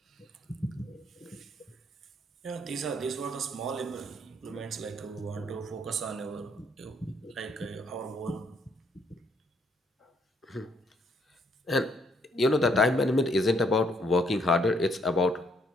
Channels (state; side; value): normal; both; correlation 0.70